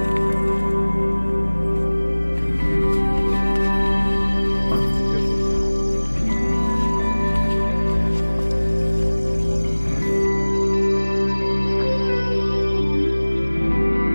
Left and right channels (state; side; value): inverted; both; correlation -1.00